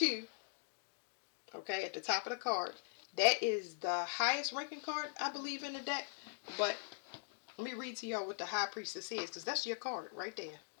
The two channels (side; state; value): right; silent; digital silence